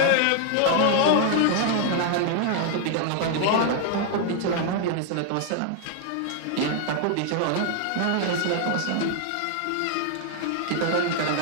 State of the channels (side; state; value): both; different; correlation 0.00